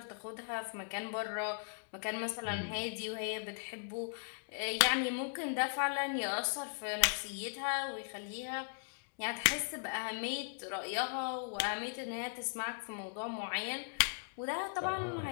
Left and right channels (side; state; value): right; silent; digital silence